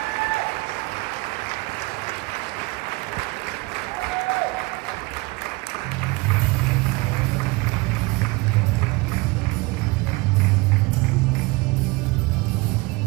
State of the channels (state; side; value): quieter; left; 24.1 dB